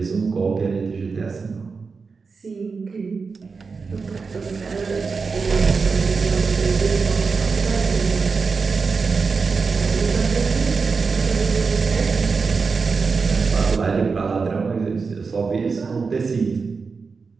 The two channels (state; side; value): quieter; left; 4.8 dB